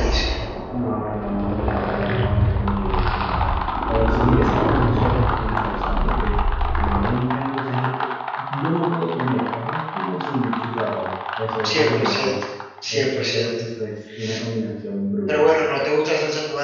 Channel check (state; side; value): identical; both; correlation 1.00